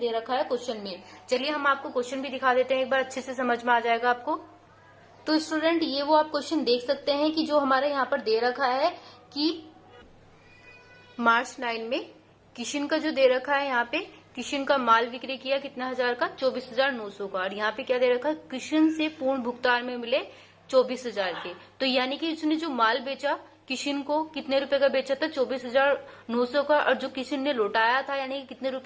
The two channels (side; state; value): both; identical; correlation 1.00